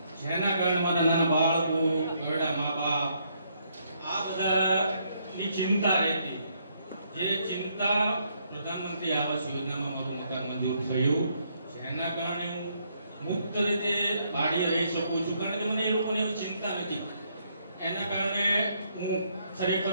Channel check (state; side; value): inverted; both; correlation -0.72